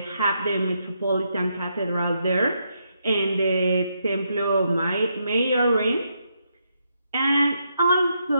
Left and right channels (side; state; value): both; inverted; correlation -0.79